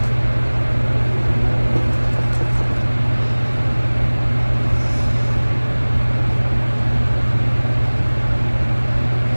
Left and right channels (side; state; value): both; inverted; correlation -1.00